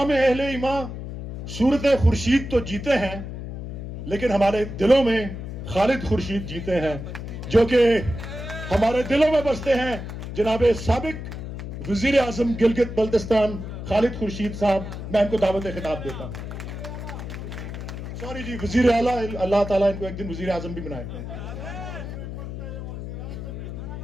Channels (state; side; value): noise; left; hum, 8 dB below the sound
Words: में अहले ईमान सूरत खुर्शीद तो जीते हैं, लेकिन हमारे दिलों में खालिद खुर्शीद जीते हैं, जो कि हमारे दिलों में बसते हैं। जनाब साबिक वजीर आजम गिलगित बल्तिस्तान खालिद खुर्शीद साहब, मैं इनको दावत खिताब देता हूं। सॉरी जी, वजीर आला, अल्लाह ताला इनको एक दिन वजीर आजम भी बनाए।